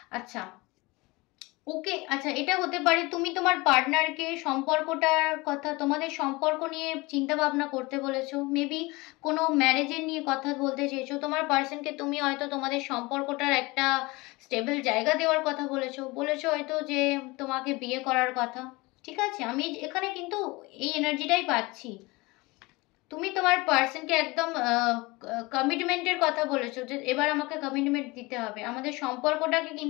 আচ্ছা ওকে, আচ্ছা এটা হতে পারে তুমি তোমার পার্টনারকে সম্পর্কটার কথা, তোমাদের সম্পর্ক নিয়ে চিন্তা ভাবনা করতে বলেছো, মেবি কোনো ম্যারেজের নিয়ে কথা বলতে চেয়েছো, তোমার পার্সনকে তুমি হয়তো তোমাদের সম্পর্কটার একটা স্টেবল জায়গা দেওয়ার কথা বলেছো হয়তো যে তোমাকে বিয়ে করার কথা। ঠিক আছে, আমি এখানে কিন্তু এই এনার্জিটাই পাচ্ছি, তুমি তোমার পার্সনকে একদম কমিটমেন্টের কথা বলেছো, যে এবার আমাকে কমিটমেন্ট দিতে হবে, আমাদের সম্পর্কটাকে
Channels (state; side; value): quieter; right; 23.5 dB